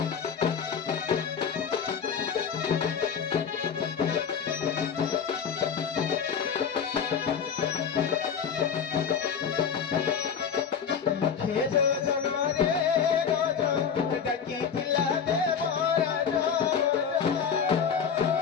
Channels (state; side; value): quieter; right; 7.0 dB